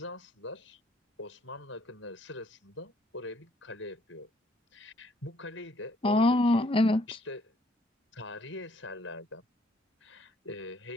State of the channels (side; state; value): both; normal; correlation 0.65